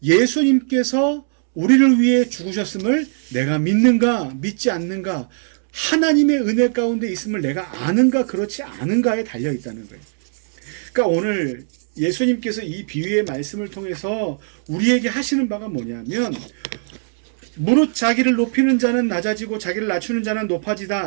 예수님께서 우리를 위해 죽으셨음을 내가 믿는가 믿지 않는가, 하나님의 은혜 가운데 있음을 내가 아는가 그렇지 않은가에 달려있다는 거예요. 그러니까 오늘 예수님께서 이 비유의 말씀을 통해서 우리에게 하시는 바가 뭐냐면, 무릇 자기를 높이는 자는 낮아지고 자기를 낮추는 자는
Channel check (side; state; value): left; silent; digital silence